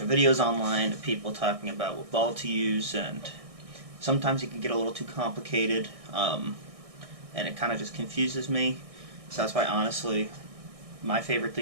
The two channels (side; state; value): left; late; 1.6 ms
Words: videos online of people talking about what ball to use, and sometimes it can get a little too complicated, and it kind of just confuses me. So that's why honestly my favorite